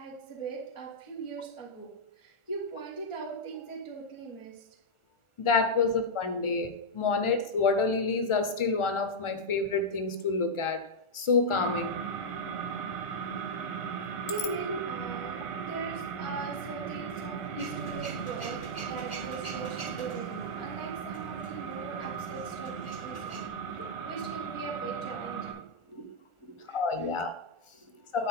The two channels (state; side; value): late; right; 1.4 ms